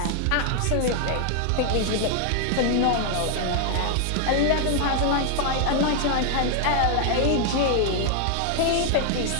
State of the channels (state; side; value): different; both; correlation 0.00